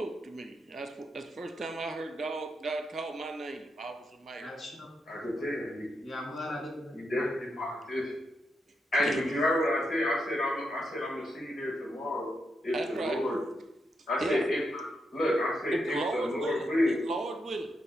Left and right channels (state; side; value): normal; both; correlation 0.83